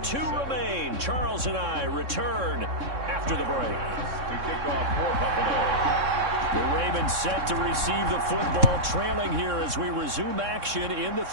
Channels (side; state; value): left; late; 3.6 ms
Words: 2 remain. Charles and I return after the break. To kick off for Buffalo. The Ravens set to receive the football, trailing here as we resume action in the